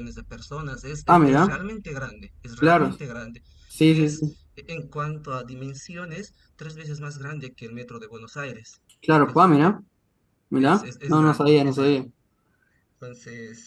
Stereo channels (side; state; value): both; identical; correlation 1.00